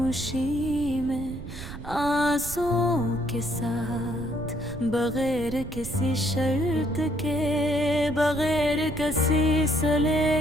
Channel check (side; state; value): right; noise; rumble, 11 dB below the sound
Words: में, आंसुओं के साथ, बगैर किसी शर्त के, बगैर किसी